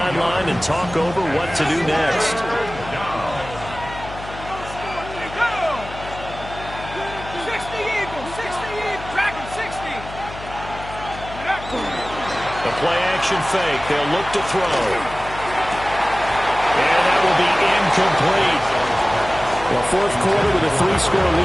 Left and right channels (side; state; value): left; noise; hum, 13 dB below the sound